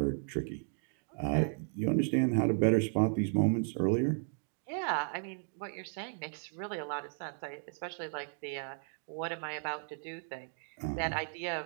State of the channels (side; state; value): left; silent; 55 dB below the other